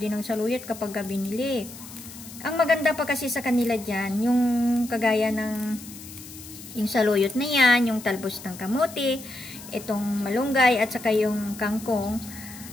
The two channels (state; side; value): noise; left; hiss, 15 dB below the sound